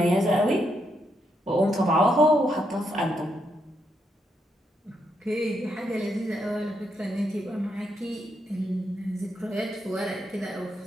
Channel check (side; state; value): both; normal; correlation 0.79